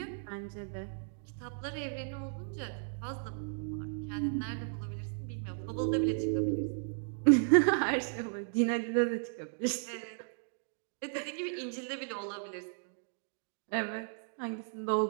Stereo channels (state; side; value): silent; left; digital silence